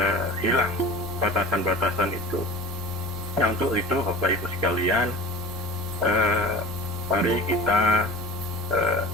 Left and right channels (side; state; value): both; normal; correlation 0.38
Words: hilang batasan-batasan itu. Nah, untuk itu Bapak Ibu sekalian, mari kita